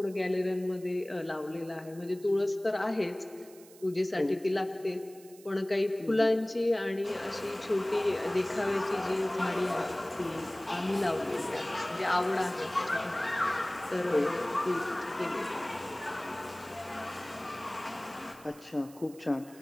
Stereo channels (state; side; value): noise; right; hiss, 22 dB below the sound